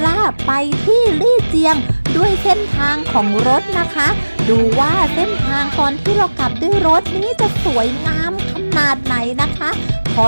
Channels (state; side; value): inverted; both; correlation -1.00